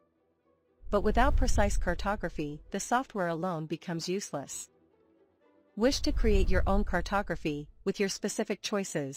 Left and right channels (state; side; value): identical; both; correlation 1.00